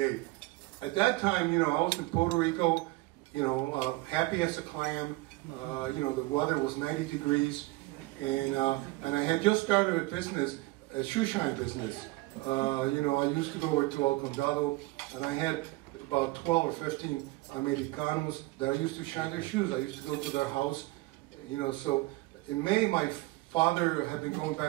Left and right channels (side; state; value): left; quieter; 21.0 dB